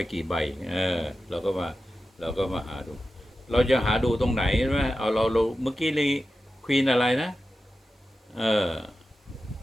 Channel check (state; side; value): normal; both; correlation 0.92